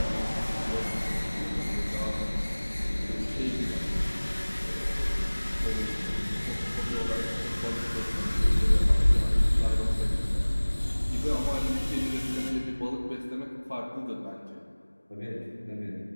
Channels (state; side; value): inverted; both; correlation -1.00